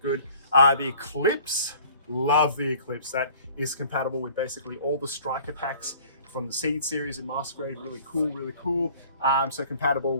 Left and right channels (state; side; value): inverted; both; correlation -0.50